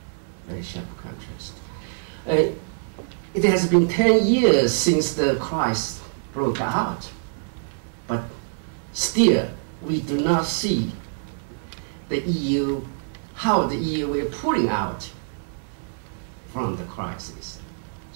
Very sharp contrast. It has been 10 years since the crisis broke out, but still we do not see the EU, how the EU is pulling out from the crisis.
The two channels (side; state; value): left; silent; 58 dB below the other